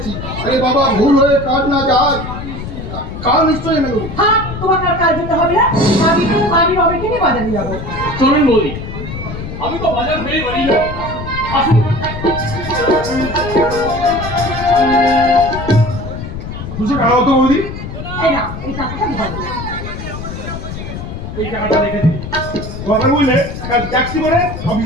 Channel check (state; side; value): noise; left; rumble, 8 dB below the sound